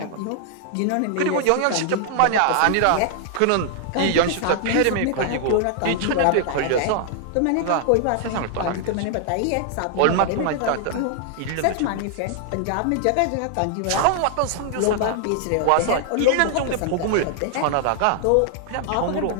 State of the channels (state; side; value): different; both; correlation 0.00